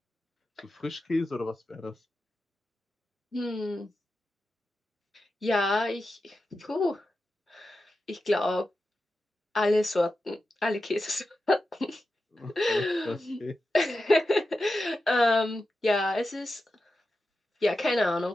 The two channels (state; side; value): normal; both; correlation 0.91